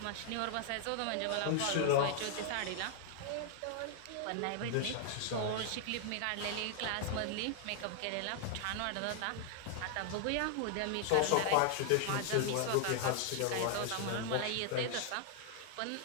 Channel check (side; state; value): both; different; correlation 0.00